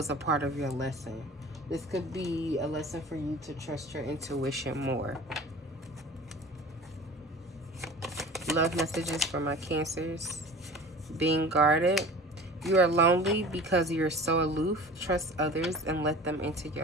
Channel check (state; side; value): normal; both; correlation 0.40